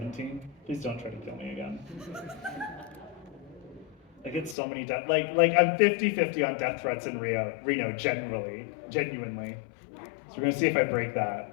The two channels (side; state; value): right; drops out; at 4.5 s